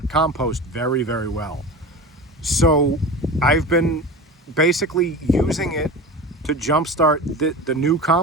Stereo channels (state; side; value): normal; both; correlation 0.31